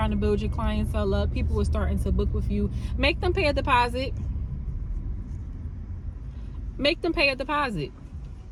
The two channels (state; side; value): identical; both; correlation 1.00